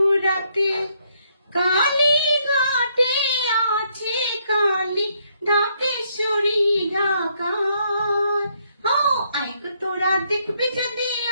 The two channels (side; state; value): both; inverted; correlation -0.72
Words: কালীঘাটে আছে কালী ঢাকেশ্বরী ঢাকায়। আয় গো তোরা দেখবি যদি